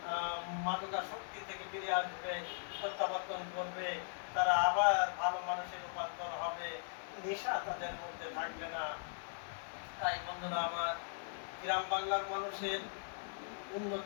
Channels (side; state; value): right; silent; digital silence